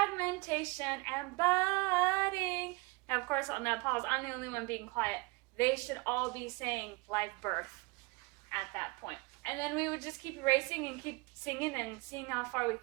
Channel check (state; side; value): quieter; left; 26.4 dB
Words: and budding. Now, of course, on that pause, I'm the only one being quiet. They should all be saying live birth at that point. And then we would just keep erasing and keep singing and seeing how far we